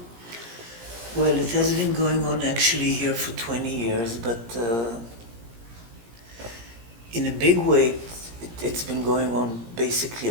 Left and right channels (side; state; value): left; late; 17 ms